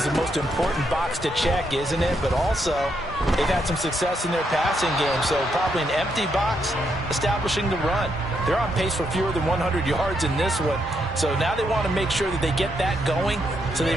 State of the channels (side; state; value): both; normal; correlation 0.78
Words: the most important box to check, isn't it? But also, they've had some success in their passing game, so probably an empty box establishing the run. They're on pace for fewer than 100 yards in this one, so now they want to make sure that they get that going so they